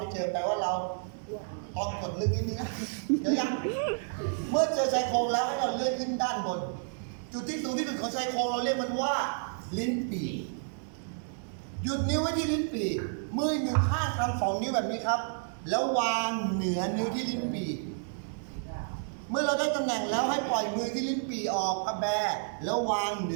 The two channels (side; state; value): left; silent; digital silence